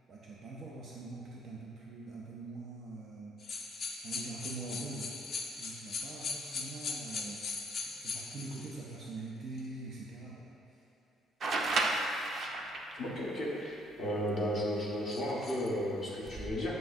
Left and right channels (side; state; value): both; normal; correlation 0.65